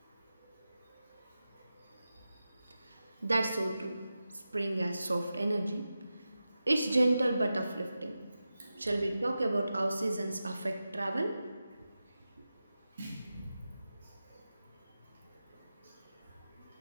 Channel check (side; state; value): both; inverted; correlation -0.92